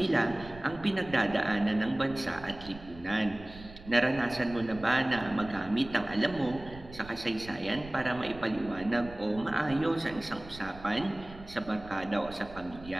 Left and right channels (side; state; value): right; noise; rumble, 16 dB below the sound